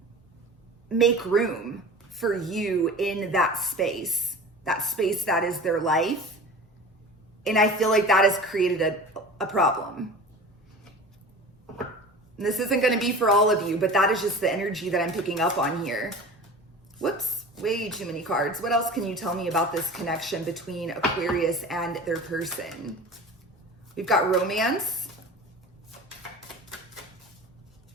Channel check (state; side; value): normal; both; correlation 0.37